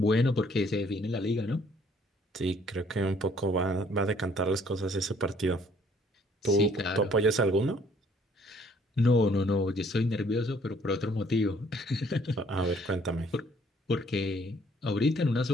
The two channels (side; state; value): both; normal; correlation 0.62